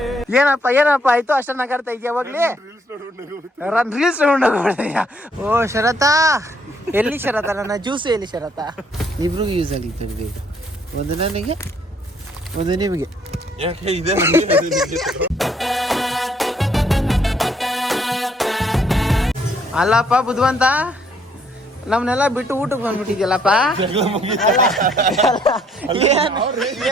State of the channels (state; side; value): normal; both; correlation 0.67